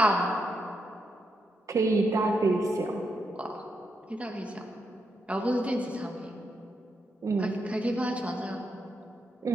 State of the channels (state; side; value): normal; both; correlation 0.82